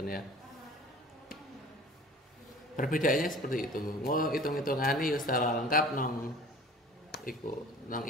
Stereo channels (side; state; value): both; normal; correlation 0.44